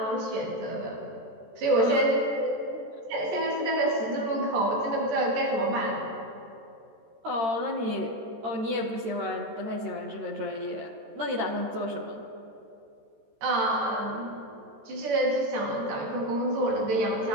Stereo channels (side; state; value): left; late; 14 ms